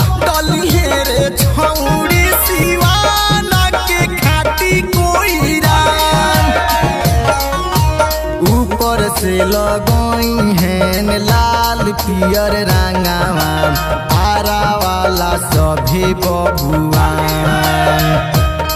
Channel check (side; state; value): both; identical; correlation 1.00